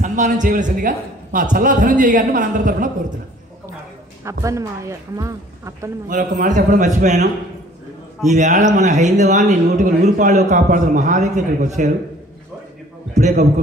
సన్మానం చేయవలసిందిగా మా చల్లా ధనంజయ్ గారిని మనందరి తరఫున కోరుతున్నాం. మరొక మాట చెప్పడం మర్చిపోయాను. ఈవేళ మన హైందవాన్ని 100కు 100 కాపాడుతున్న మహాదేవి ఇక్కడికి వచ్చారు. ఇప్పుడే గబుకు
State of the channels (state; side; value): normal; both; correlation 0.54